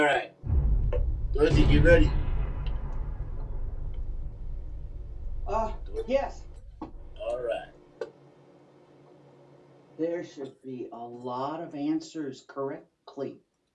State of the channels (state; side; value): identical; both; correlation 1.00